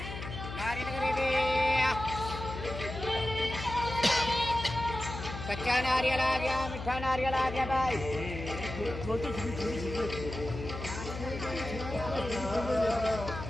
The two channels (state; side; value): noise; left; hum, 8 dB below the sound